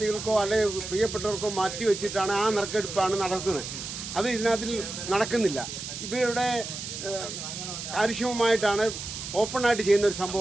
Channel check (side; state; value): right; noise; hiss, 8 dB below the sound